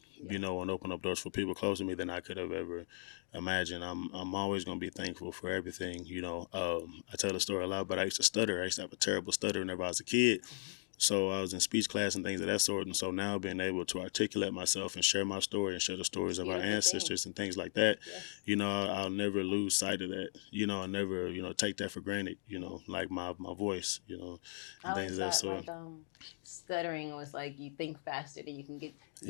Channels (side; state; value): right; silent; digital silence